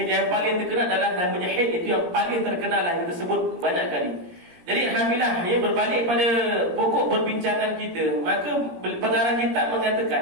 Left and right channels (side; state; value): left; late; 17 ms